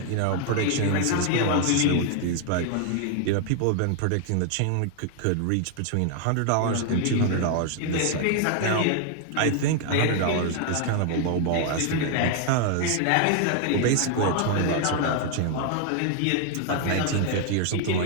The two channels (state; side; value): different; both; correlation 0.00